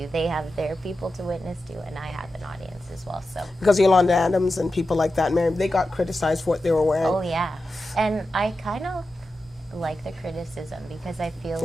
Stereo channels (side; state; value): both; normal; correlation 0.91